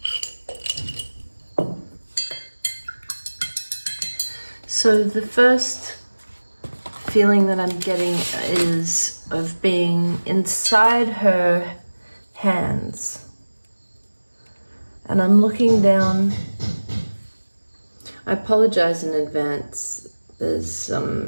So the first feeling that I'm getting is of being inside her hands. And I'm looking down. I apologize in advance. There's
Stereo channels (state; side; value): inverted; both; correlation -1.00